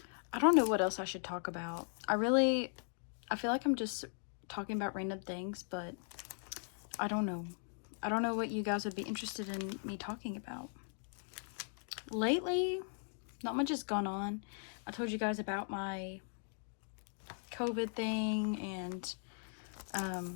I don't know what else I should talk about. I feel like I'm just talking about random things, but I don't know. I don't know what you guys would be interested in me talking about. Lately, not much has gone on. I told you guys about my COVID thing and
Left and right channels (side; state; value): right; silent; 52 dB below the other